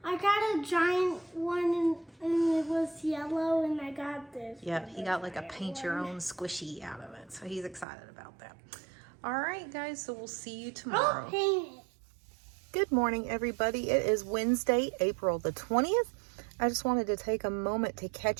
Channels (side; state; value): left; drops out; at 7.9 s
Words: got a giant one and it was yellow, and I got this. Yeah, he got like a paint your own squishy out of it. So he's excited about that. All right, guys, so we'll see you tomorrow. I'll paint it. Good morning, everybody. It is Wednesday, April the 20th. I just wanted to take a moment to